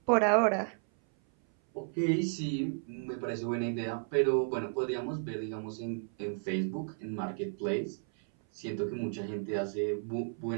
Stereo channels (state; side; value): silent; left; 56 dB below the other